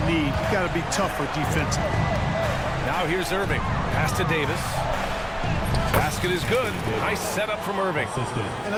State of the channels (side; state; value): both; identical; correlation 1.00